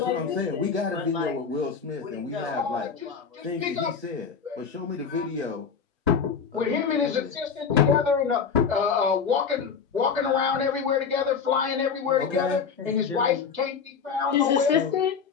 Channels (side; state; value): right; quieter; 6.2 dB